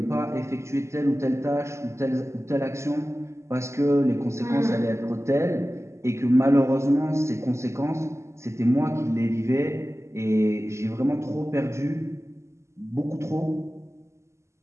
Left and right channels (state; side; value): late; left; 0.13 ms